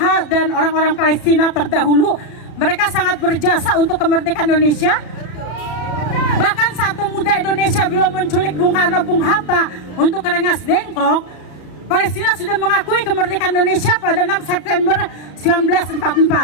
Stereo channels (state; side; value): late; right; 34 ms